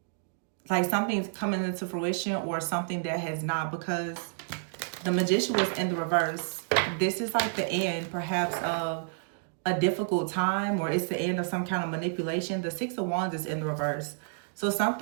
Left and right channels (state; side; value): silent; left; digital silence